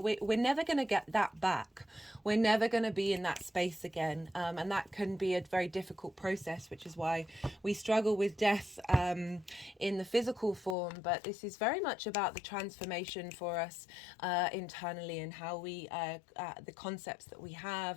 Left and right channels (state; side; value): drops out; right; at 10.8 s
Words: never going to get that back. We're never going to be in that space again, and that can be a very difficult process, which is why we struggle with death in the physical form. But this is very much about the transformation for us internally, and how we the concepts that we